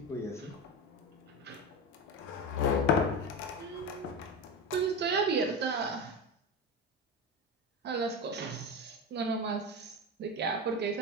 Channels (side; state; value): both; normal; correlation 0.21